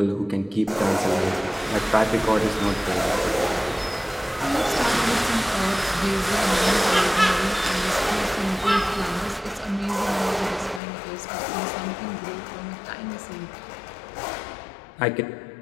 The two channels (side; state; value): right; drops out; at 10.8 s